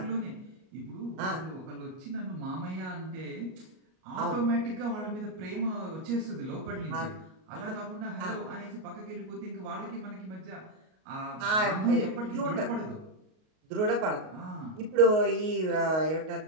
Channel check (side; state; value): left; late; 38 ms